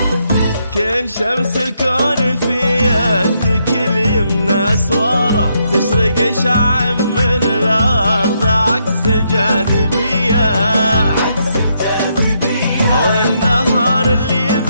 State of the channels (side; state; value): both; inverted; correlation -0.77